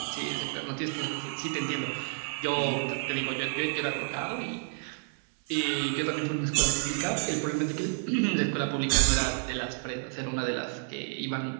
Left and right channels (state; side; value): silent; left; 58 dB below the other